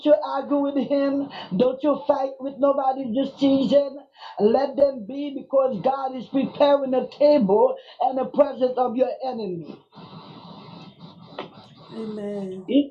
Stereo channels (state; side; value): identical; both; correlation 1.00